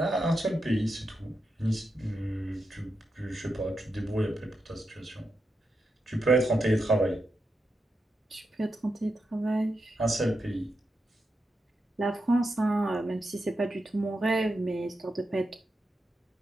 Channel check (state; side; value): normal; both; correlation 0.86